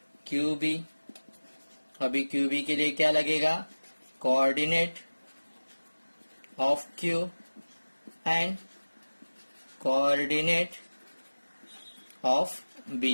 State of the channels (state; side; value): inverted; both; correlation -1.00